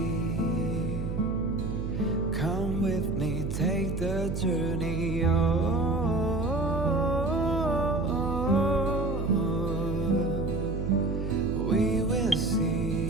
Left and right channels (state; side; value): noise; right; hum, 3 dB below the sound